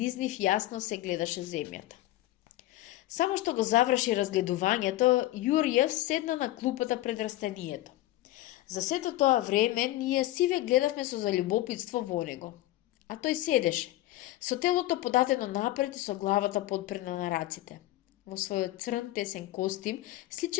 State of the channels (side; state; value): right; quieter; 16.0 dB